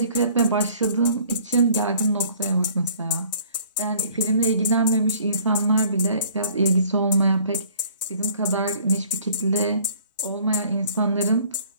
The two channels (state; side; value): inverted; both; correlation -0.54